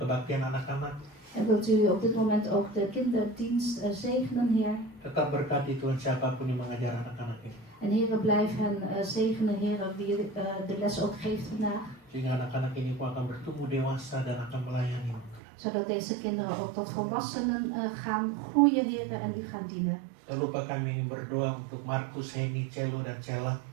anak-anak. En wilt u op dit moment ook de kinderdienst zegenen, Heer. Tetap berkati Tuhan siapapun yang mengajar anak-anak ini. En Heer, blijf hen zegenen, Heer, wie de les ook geeft vandaag. Sehingga anak-anak ini pun akan bertumbuh dewasa dan akan melayani. Zodat deze kinderen ook tot volwassenen gaan groeien, Heer, en u gaan dienen. Tak lupa kami berdoa untuk Markus, Henny, Celo, dan Cella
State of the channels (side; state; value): left; drops out; at 15.4 s